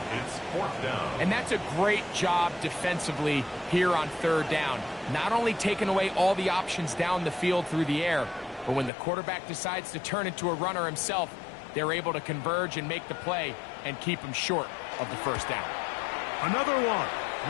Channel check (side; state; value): right; drops out; at 8.9 s